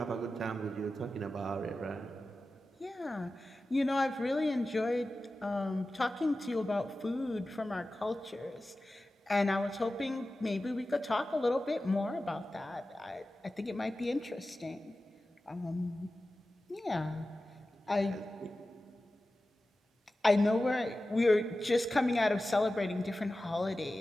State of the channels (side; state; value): both; normal; correlation 0.94